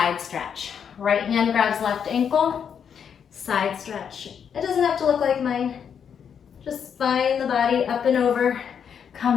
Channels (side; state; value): right; quieter; 7.6 dB